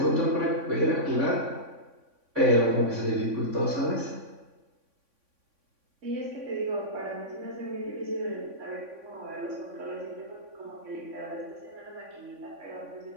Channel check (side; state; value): left; late; 3.6 ms